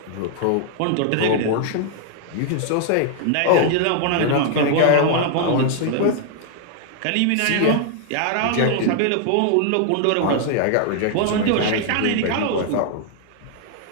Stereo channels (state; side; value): different; both; correlation 0.00